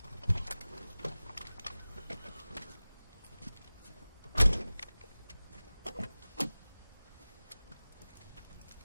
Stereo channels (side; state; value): both; inverted; correlation -0.98